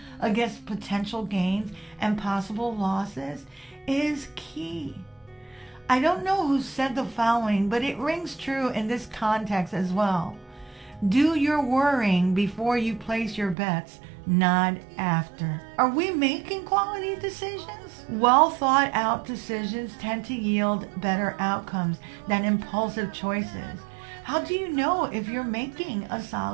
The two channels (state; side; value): drops out; left; at 13.6 s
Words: against potential gains and possible losses is key. I don't know who said the following, but it rings true in this context as well. Do your worrying before you place your bets, not after. Are we making quality decisions? Well thought out decisions tend to yield better outcomes than impulsive choices. How do you know if you're making a